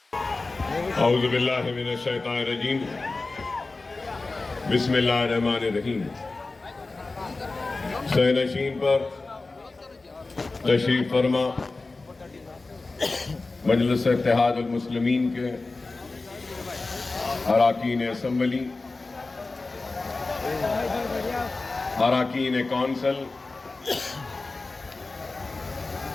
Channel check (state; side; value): quieter; right; 3.5 dB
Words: اعوذ باللہ من الشیطان الرجیم، بسم اللہ الرحمن الرحیم۔ سینشین پر تشریف فرما مجلس اتحاد المسلمین کے اراکین اسمبلی، اراکین council,